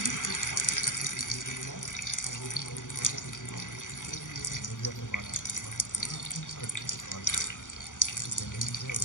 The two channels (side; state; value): right; late; 0.87 ms